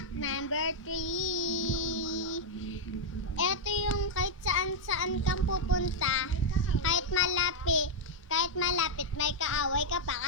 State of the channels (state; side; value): normal; both; correlation -0.02